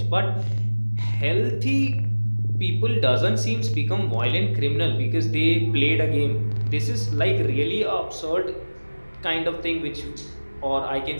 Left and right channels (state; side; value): inverted; both; correlation -1.00